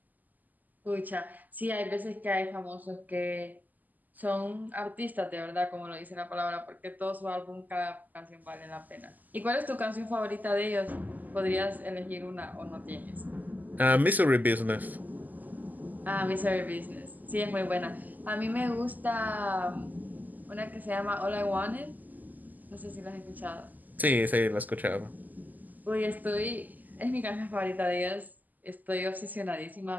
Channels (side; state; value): left; late; 0.083 ms